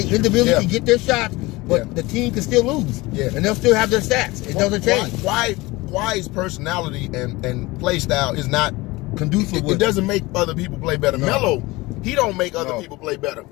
individually can get their shots, but the team can still lose. Yeah. And they'll still have their stats. It doesn't change. Kawhi's personality and play style is not conducive. It doesn't make other people play better. Melo, he don't make other people play better.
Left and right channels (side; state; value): right; quieter; 21.5 dB